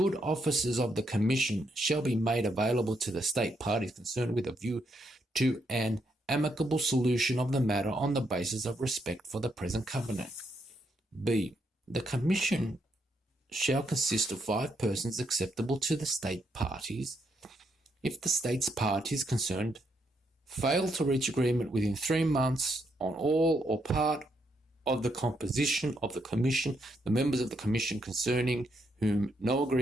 offices of the commission shall be made available to the state parties concerned with a view to an amicable solution of the matter on the basis of respect for the present covenant. B. The commission shall consist of 5 persons acceptable to the state parties. If the states parties concerned fail to reach agreement within 3 months on all or part of the composition of the commission, the members of the commission concerning whom no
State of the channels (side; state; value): both; normal; correlation 0.77